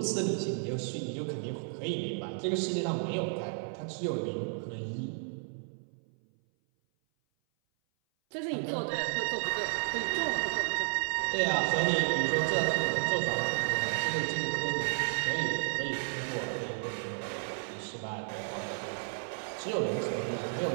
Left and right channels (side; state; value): left; silent; 56 dB below the other